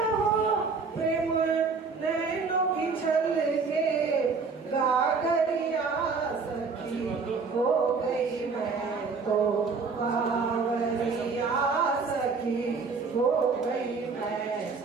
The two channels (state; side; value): quieter; left; 4.8 dB